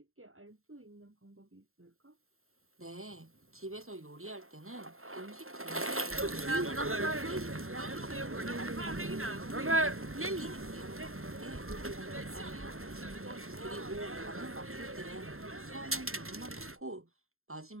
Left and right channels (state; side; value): late; left; 0.62 ms